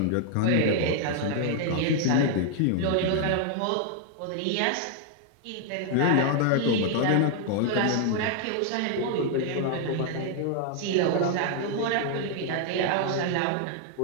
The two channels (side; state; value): both; different; correlation 0.00